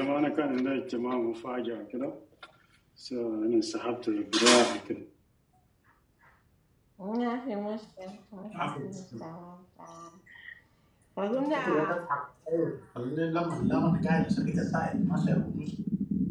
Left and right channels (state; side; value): identical; both; correlation 1.00